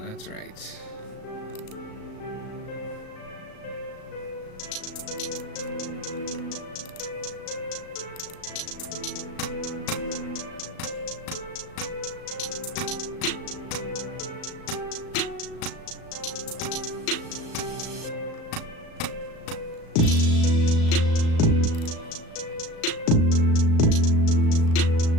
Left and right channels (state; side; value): late; right; 36 ms